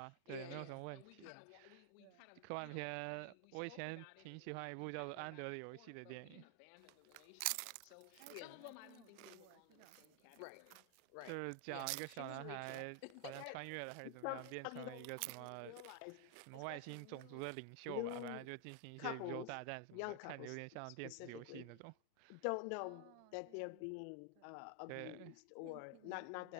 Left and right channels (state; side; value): different; both; correlation 0.00